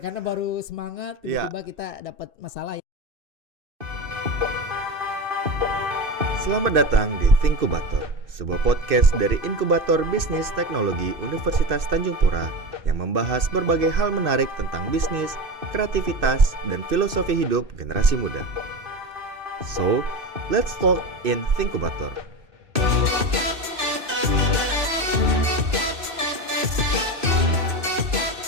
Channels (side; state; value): left; late; 2.6 ms